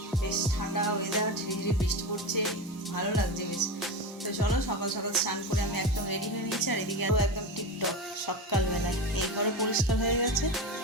বেশ ঠান্ডা ওয়েদার, ঝিরিঝিরি বৃষ্টি পড়ছে, ভালো লাগছে বেশ। তো চলো সকাল সকাল স্নান করে আমি একদম রেডি হয়ে নিয়েছি। আর এদিকে একদম টিপটপ সকালবেলায় এই ঘরও পরিষ্কার হয়ে গেছে,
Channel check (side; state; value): both; normal; correlation 0.22